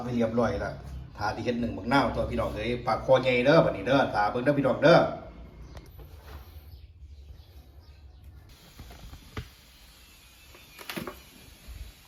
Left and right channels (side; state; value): both; identical; correlation 1.00